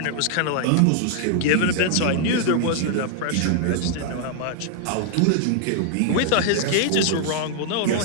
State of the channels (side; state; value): both; different; correlation 0.00